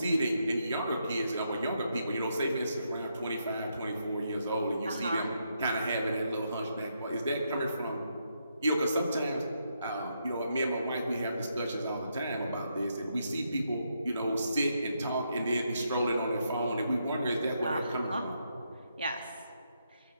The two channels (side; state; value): both; inverted; correlation -0.79